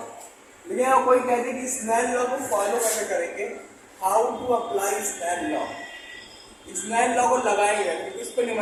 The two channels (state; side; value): identical; both; correlation 1.00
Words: यहाँ कोई कहते हैं कि स्नेल लॉ को फॉलो कैसे करेंगे, how to apply Snell law. Snell law को लगाएंगे, इस पे